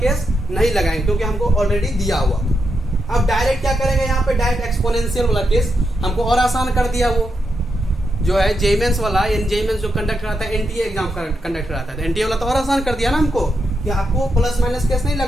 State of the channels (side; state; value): both; normal; correlation 0.84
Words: नहीं लगाएंगे क्योंकि हमको ऑलरेडी दिया हुआ था। अब डायरेक्ट क्या करेंगे, यहाँ पे डायरेक्ट एक्सपोनेंशियल वाला केस हमको और आसान कर दिया। वो जो है जेमेंस वाला, जेमेंस जो कंडक्ट कराता है एनटीए एग्जाम कंडक्ट कराता है, तो एनटीए वाला तो और आसान कर दिया ना हमको कि आपको प्लस माइनस केस नहीं